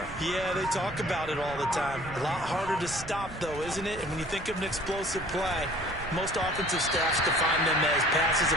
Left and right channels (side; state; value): right; noise; rumble, 15 dB below the sound